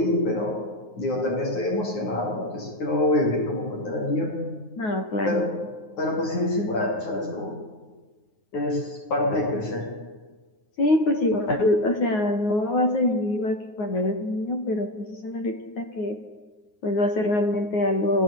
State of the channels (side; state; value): right; late; 9.5 ms